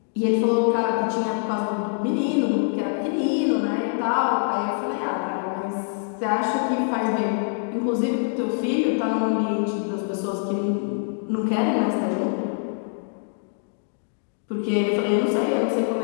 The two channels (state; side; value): silent; right; digital silence